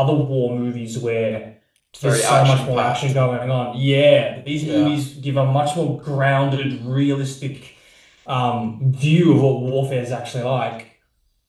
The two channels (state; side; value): identical; both; correlation 1.00